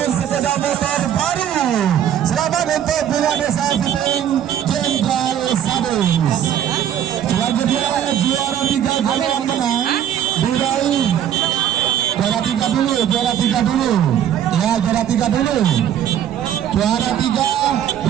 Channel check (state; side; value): quieter; left; 10.1 dB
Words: sepeda motor baru. Selamat untuk Bunga Desa Fiting Jenderal Sadis. Selanjutnya juara 3 golongan menang diraih juara 3 dulu. Ya, juara 3 dulu. Juara 3